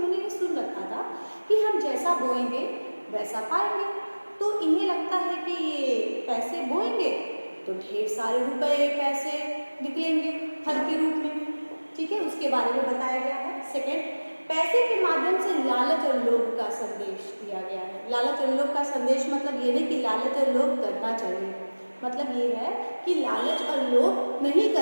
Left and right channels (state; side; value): inverted; both; correlation -1.00